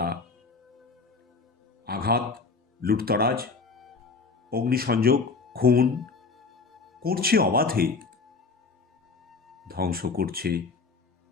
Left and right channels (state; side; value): quieter; right; 4.5 dB